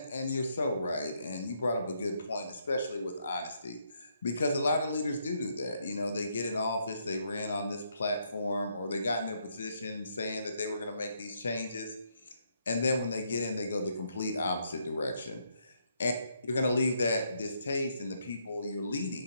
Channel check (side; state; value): both; inverted; correlation -0.75